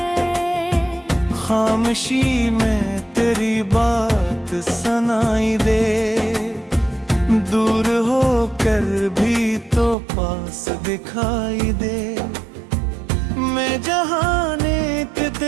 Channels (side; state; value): left; drops out; at 10.0 s